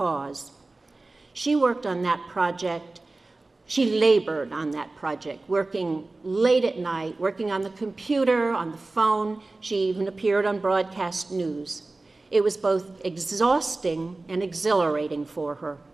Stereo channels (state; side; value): quieter; left; 3.2 dB